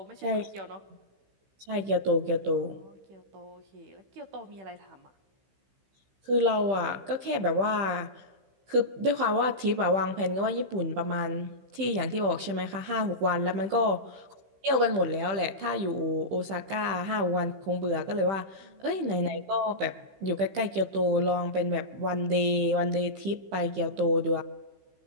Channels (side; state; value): left; late; 15 ms